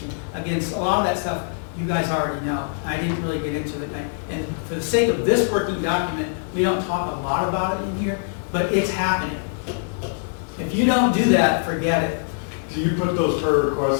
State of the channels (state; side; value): silent; right; 62 dB below the other